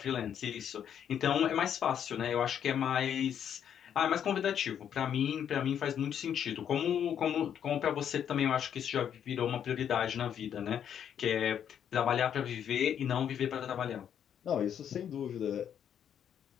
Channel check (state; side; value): quieter; right; 9.0 dB